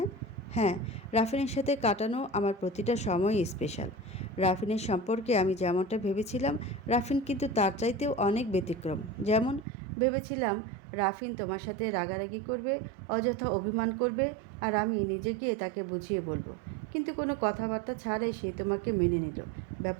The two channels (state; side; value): drops out; left; at 9.7 s